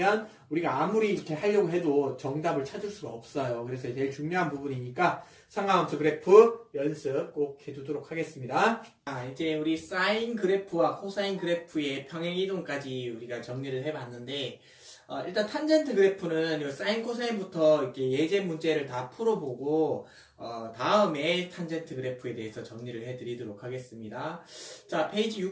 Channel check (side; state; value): both; identical; correlation 1.00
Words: 우리가 아무리 이렇게 하려고 해도 정답을 찾을 수가 없어요. 그래서 제일 중요한 부분이니까 삼각함수 그래프 연습 꼭 해두도록 하겠습니다. 이제 우리 사인 그래프와 코사인 그래프의 평행이동까지 우리가 정리를 해봤는데 일단 탄젠트 그래프는 사인 코사인부터 이렇게 예제 문제를 다 풀어보고 다음에 탄젠트 그래프에 대해서 정리를 해드리도록 하겠습니다. 자, 페이지